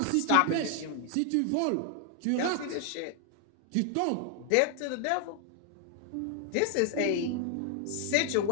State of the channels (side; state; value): both; different; correlation 0.00